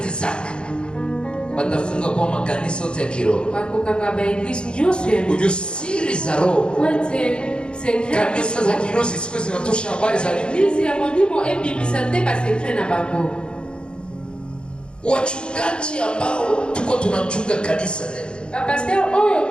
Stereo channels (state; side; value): late; right; 0.053 ms